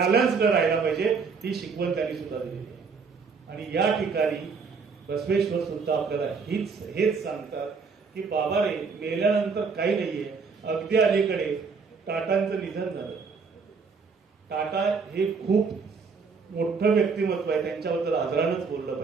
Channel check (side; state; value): left; quieter; 5.2 dB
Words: राहायला पाहिजे. ही शिकवण त्यांनी सुद्धा दिली आहे. आणि या ठिकाणी बसवेश्वर सुद्धा आपल्याला हेच सांगतात की बाबा रे, मेल्यानंतर काही नाहीये. अगदी अलीकडे टाटांचं निधन झालं. टाटा हे खूप मोठं व्यक्तिमत्व आहे, त्यांच्याबद्दल आदरानच बोललं